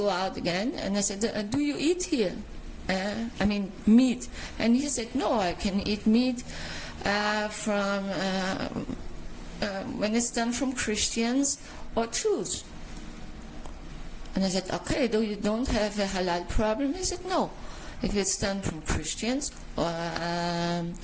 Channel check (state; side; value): identical; both; correlation 1.00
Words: out again. And I said, do you eat here? I mean, meat. And he said, no, I can eat meat from when it's done from Christians or Jews. And I said, okay, though you don't have a halal problem? He said, no. If it's done from Christians or